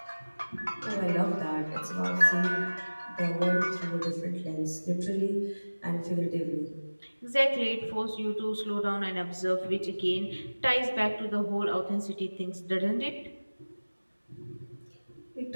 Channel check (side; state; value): both; inverted; correlation -1.00